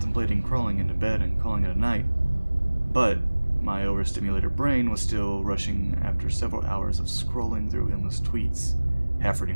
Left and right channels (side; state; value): both; inverted; correlation -1.00